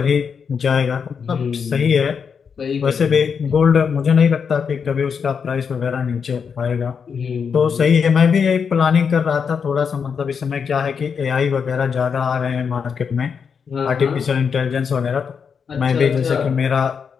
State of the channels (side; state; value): right; quieter; 6.4 dB